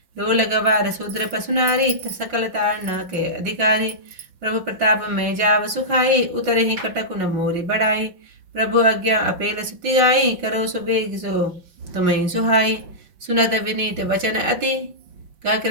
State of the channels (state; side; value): late; left; 5.5 ms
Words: डोल गवार शूद्र पशु नारी, सकल तारना के अधिकारी। प्रभु प्रताप में जाव सुखाई, उतरे ही कटक न मोरी बढ़ाई। प्रभु आज्ञा अपेल सुति गाई, करो सुबेग सो तुम्हें सुहाई। सुनत विनीत वचन अति, कह